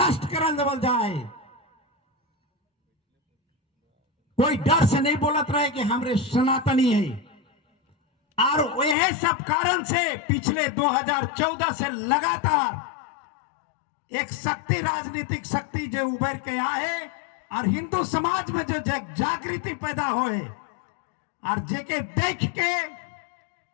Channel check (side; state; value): right; drops out; at 9.0 s